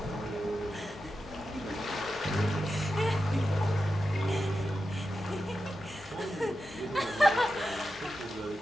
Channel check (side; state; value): both; normal; correlation 0.90